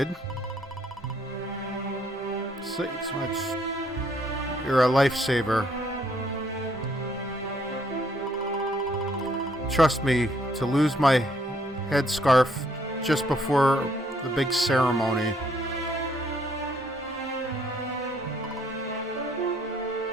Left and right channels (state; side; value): normal; both; correlation 0.68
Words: You're a lifesaver. Trust me, to lose my headscarf just before the big ceremony.